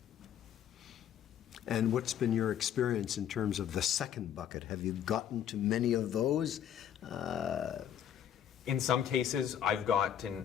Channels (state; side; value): quieter; right; 9.6 dB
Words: And what's been your experience in terms of the second bucket? Have you gotten to many of those? In some cases, I've